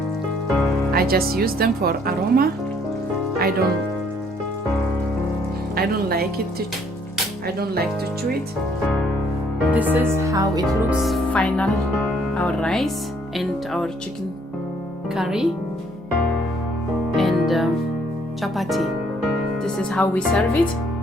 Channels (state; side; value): normal; both; correlation 0.64